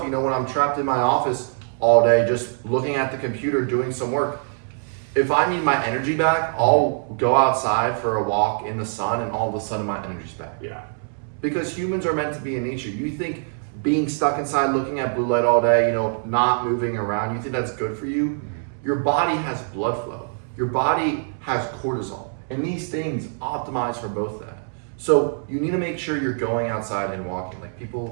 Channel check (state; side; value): silent; left; 63 dB below the other